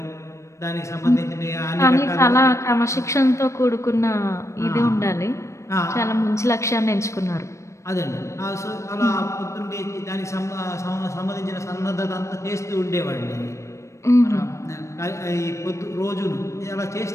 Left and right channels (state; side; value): late; right; 0.14 ms